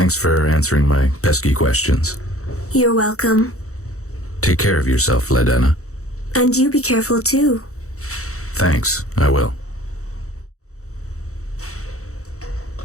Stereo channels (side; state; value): right; late; 0.64 ms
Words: for answering my pesky questions. You're welcome. Take care of yourself, Vladana. And you be careful too. Thanks, I will.